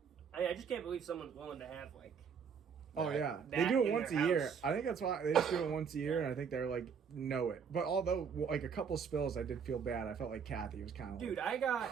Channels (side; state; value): left; quieter; 6.6 dB